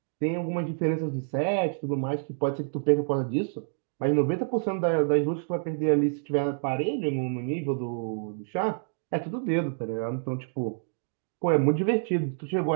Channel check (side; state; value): left; silent; digital silence